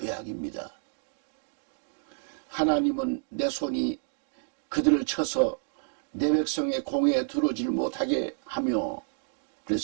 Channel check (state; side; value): silent; left; digital silence